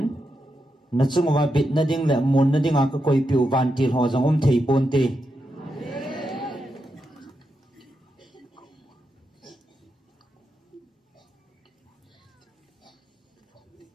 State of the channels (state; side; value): normal; both; correlation 0.85